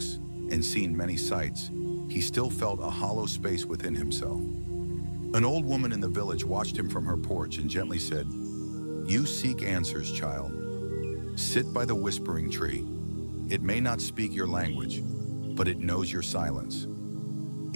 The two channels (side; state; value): both; inverted; correlation -1.00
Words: and seen many sights, he still felt a hollow space within himself. An old woman in the village watched him from her porch and gently said, "You seek answers, child. Sit by the whispering tree. It may not speak your language, but it knows your silence."